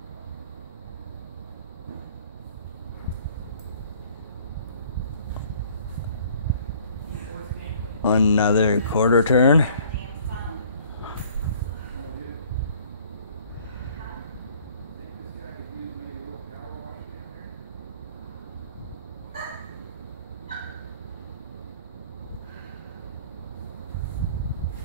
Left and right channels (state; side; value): inverted; both; correlation -0.55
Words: Another quarter turn.